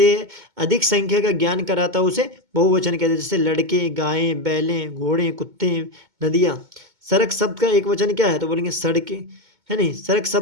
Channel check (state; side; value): late; left; 2.2 ms